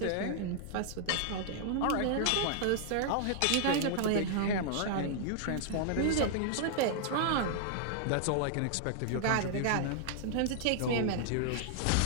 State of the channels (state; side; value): different; both; correlation -0.01